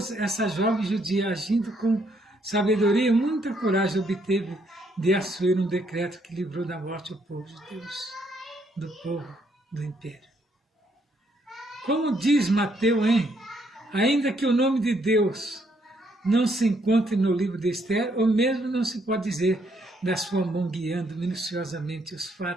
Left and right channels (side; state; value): both; normal; correlation 0.72